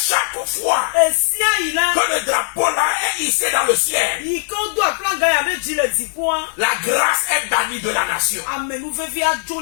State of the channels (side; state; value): right; silent; 58 dB below the other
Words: fois que le drapeau là est hissé dans le ciel, la grâce est bannie de la nation. nation.